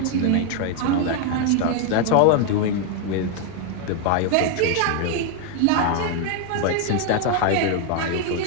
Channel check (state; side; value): different; both; correlation 0.01